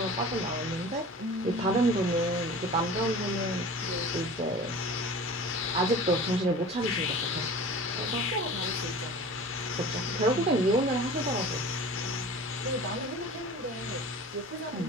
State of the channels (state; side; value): normal; both; correlation 0.39